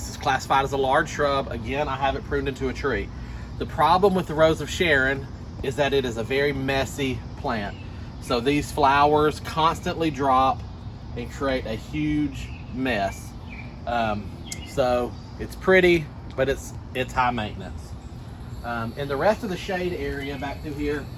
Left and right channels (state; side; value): identical; both; correlation 1.00